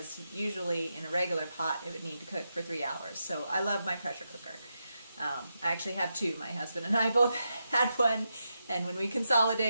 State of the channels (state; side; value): inverted; both; correlation -0.86